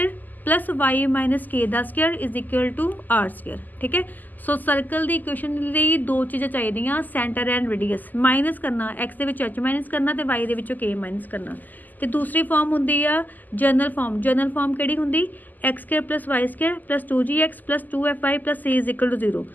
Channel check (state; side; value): late; right; 0.084 ms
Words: plus y minus k का square is equal to r square, ठीक है। सो सर्कल की इक्वेशन लिए दो चीज़ां चाहिए, सेंटर एंड रेडियस। माइनस करना एक्स के विच एच माइनस करना तो वाई के के माइनस करना। तो दूसरी फॉर्म होंगी आ जनरल फॉर्म। जनरल फॉर्म किहड़ी हुंदी, x square plus y square plus 2gx plus 2fy plus c is equal to 0।